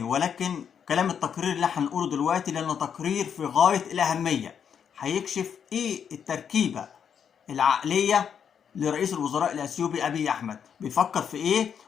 ولكن كلام التقرير اللي هنقوله دلوقتي، لأنه تقرير في غاية الأهمية، هيكشف إيه التركيبة العقلية لرئيس الوزراء الأثيوبي أبي أحمد، بيفكر في إيه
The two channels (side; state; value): right; quieter; 7.7 dB